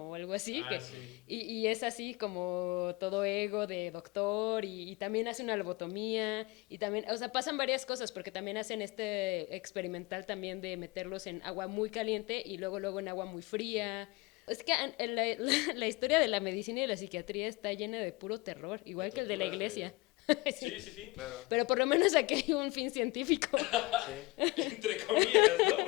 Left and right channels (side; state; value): right; quieter; 23.2 dB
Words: o algo así, Sí. y es así como todo ego de doctor y también hace una lobotomía y también, o sea, pasan varias cosas porque también hacen este experimental también de meterlos en agua muy caliente y luego en agua muy fría. Sí. Es que la historia de la medicina y la psiquiatría está llena de puro terror, igual que el de la iglesia. Sí, sí, sí. Claro. Pero por lo menos aquí hay un fin científico. Sí. Entre comillas, ¿no?